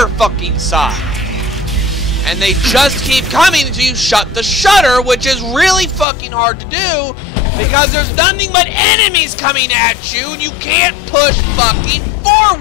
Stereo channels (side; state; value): right; drops out; at 6.1 s